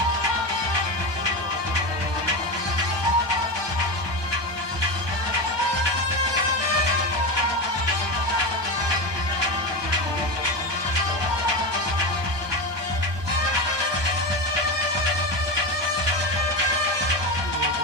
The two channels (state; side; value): late; left; 1.2 ms